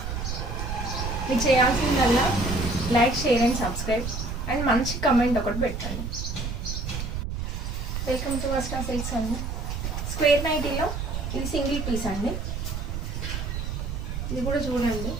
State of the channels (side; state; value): right; noise; rumble, 4 dB below the sound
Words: మీరు చేయాల్సిందల్లా like, share and subscribe and మంచి కమెంట్ ఒకటి పెట్టండి. వెల్కమ్ టు వస్త్రా సిల్క్స్ అండి. స్క్వేర్ నైటీలో ఇది సింగిల్ పీస్ అండి. ఇది కూడా చూడండి